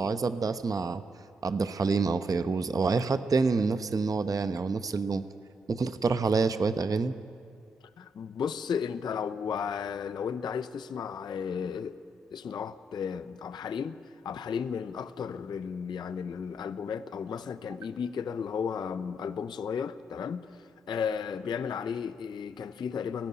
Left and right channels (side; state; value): both; normal; correlation 0.77